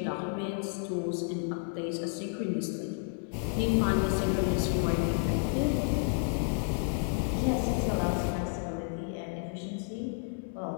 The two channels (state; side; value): silent; right; 57 dB below the other